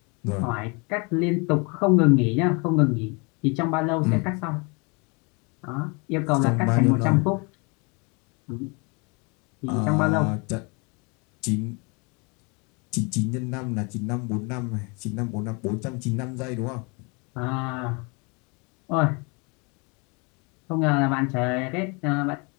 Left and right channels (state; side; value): quieter; right; 31.3 dB